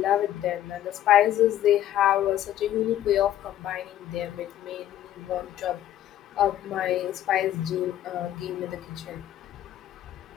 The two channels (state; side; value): quieter; right; 12.2 dB